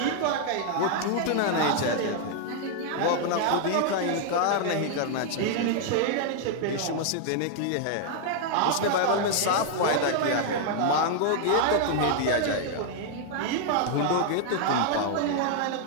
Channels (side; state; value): both; different; correlation 0.00